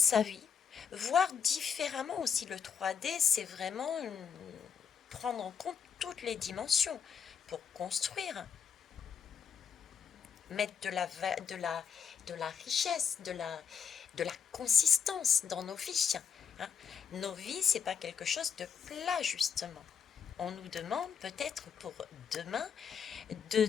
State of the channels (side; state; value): right; quieter; 7.0 dB